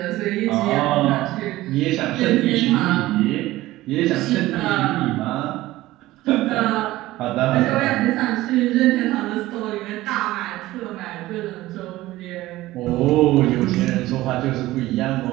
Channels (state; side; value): quieter; left; 17.0 dB